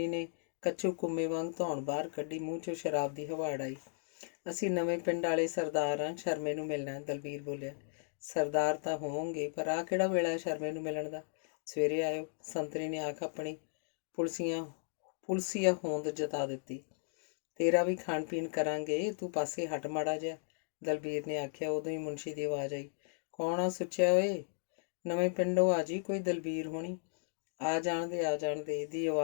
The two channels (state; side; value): silent; right; digital silence